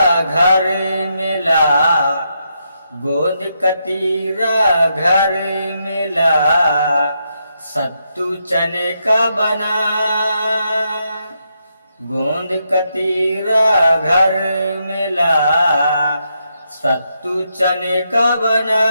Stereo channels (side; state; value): both; inverted; correlation -0.81